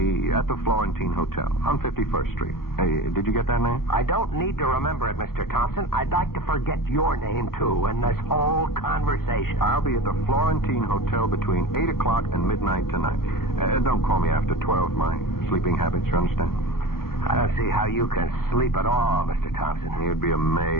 at the Florentine Hotel on 51st Street. Hey, did you get that name? I don't need to remember it, Mr. Thompson. I'd like to forget your name, too, in this whole conversation. I'll be at the Florentine Hotel between 8 o'clock and midnight tonight. Don't call me after 12. My sleeping habits, you understand? I don't see how you can sleep at all, Mr. Thompson. You'd be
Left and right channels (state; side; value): late; right; 0.93 ms